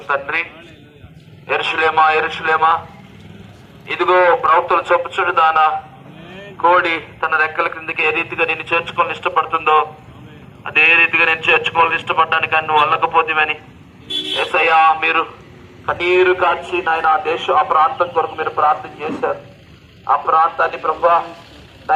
తండ్రి, యెరూషలేమా యెరూషలేమా, ఇదిగో ప్రవక్తలు చెప్పుచుడు దానా, కోడి తన రెక్కల క్రిందికి ఏ రీతిగా నేను చేర్చుకోవాలని ఇష్టపడుతుందో అదే రీతిగా నేను చేర్చుకోవాలని ఇష్టపడ్డానికి నువ్వు వల్లకపోతేవని యేసయ్యా, మీరు కన్నీరు కాచి నాయన ఆ ప్రాంతం కొరకు మీరు ప్రార్థన చేశారు. ఆ ప్రాంతాన్ని ప్రభువా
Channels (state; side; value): identical; both; correlation 1.00